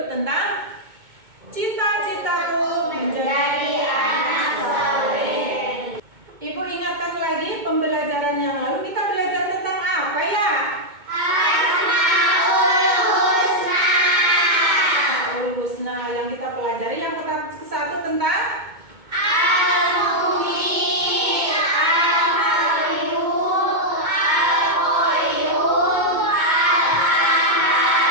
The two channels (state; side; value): late; left; 2.2 ms